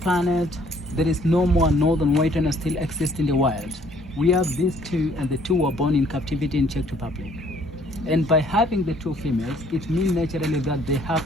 there is no more northern white rhino still exist in the wild. We have these two, and the two were born in captivity in Czech Republic. And by having the two females, it means naturally that they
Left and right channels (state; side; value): normal; both; correlation 0.61